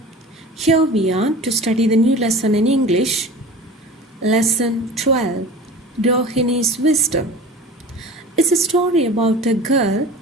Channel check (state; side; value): normal; both; correlation 0.38